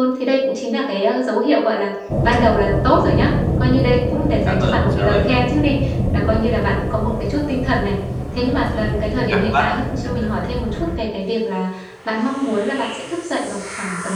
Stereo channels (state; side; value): identical; both; correlation 1.00